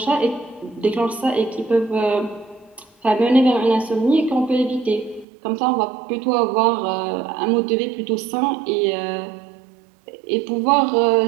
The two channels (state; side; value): drops out; left; at 5.2 s